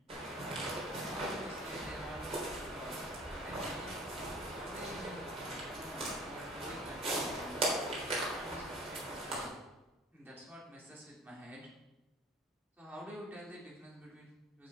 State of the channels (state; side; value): normal; both; correlation 0.46